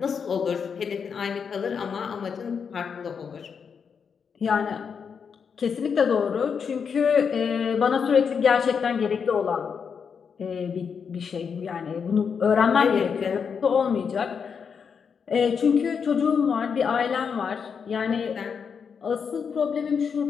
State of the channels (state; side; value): quieter; right; 6.4 dB